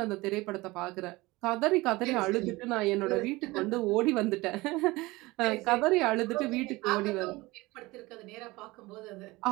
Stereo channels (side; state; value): left; quieter; 21.3 dB